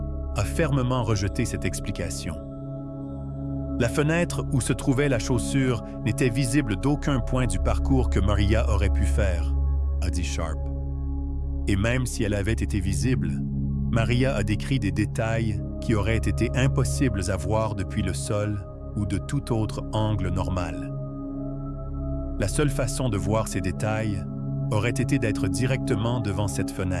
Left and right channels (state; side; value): identical; both; correlation 1.00